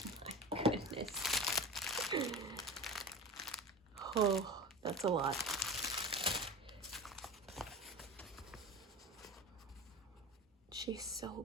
my goodness. Oh, that's a lot. She's so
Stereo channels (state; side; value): normal; both; correlation 0.30